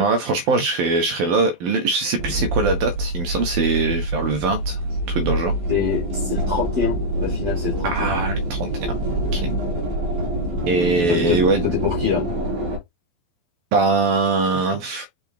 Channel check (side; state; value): left; late; 12 ms